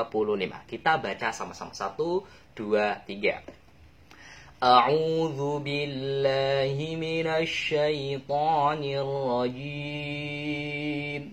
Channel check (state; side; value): identical; both; correlation 1.00